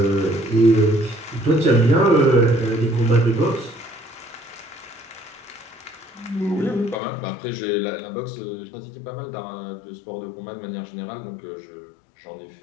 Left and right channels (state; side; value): drops out; right; at 7.0 s